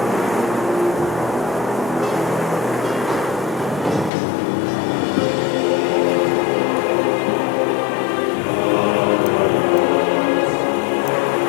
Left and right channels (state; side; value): drops out; right; at 4.1 s